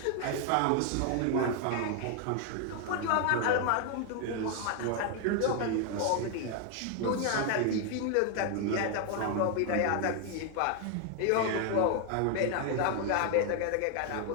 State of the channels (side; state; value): both; different; correlation 0.00